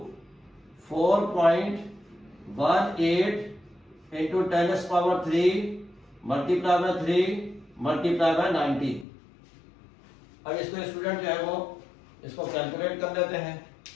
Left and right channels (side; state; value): right; drops out; at 9.1 s